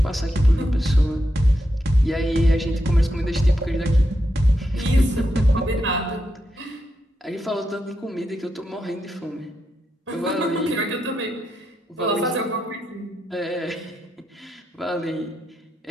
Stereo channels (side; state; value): both; normal; correlation 0.84